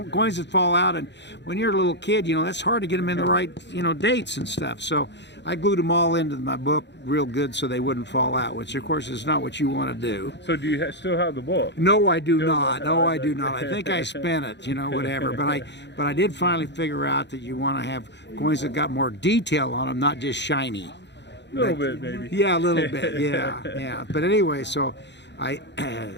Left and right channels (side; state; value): right; late; 0.51 ms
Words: coins would fall out. And when you're a little kid, you know, that's hard to get them in the right, you know, dates and stuff. So I glued them all into my book real good so they wouldn't fall out, which of course is not what you want to do. So do you still have the book? No, I do not. No, I do not. I think I spent it, you know, whatever. But I did finally figure out that you want to have coins that got more detail on them, not just shiny. A little bit, maybe. Yeah, a little bit. Yeah. But anyway, so I've